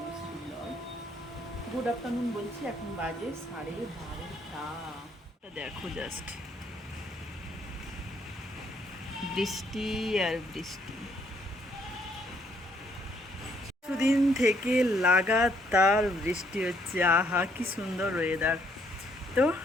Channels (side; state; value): both; normal; correlation 0.69